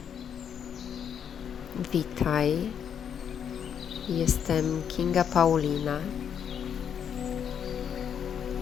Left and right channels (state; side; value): quieter; right; 8.2 dB